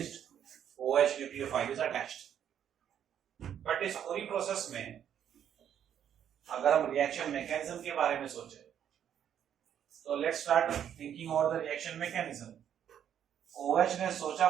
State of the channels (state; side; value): quieter; left; 9.4 dB